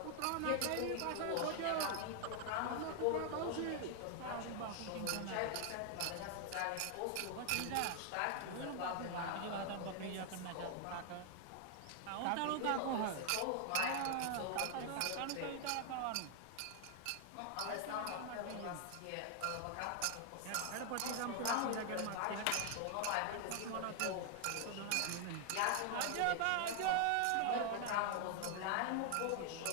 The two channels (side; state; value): both; different; correlation 0.00